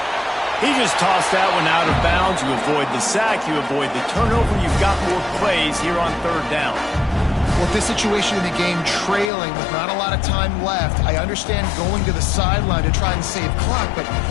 He just tossed that one out of bounds. You avoid the sack. You avoid the turnover. You've got more plays here on 3rd down. Well, this situation in the game, trailing with not a lot of time left, I understand going to the sideline to try and save clock, but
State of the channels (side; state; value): right; drops out; at 9.3 s